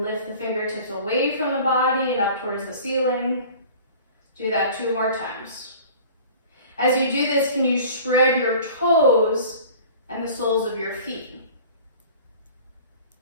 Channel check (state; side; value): inverted; both; correlation -0.44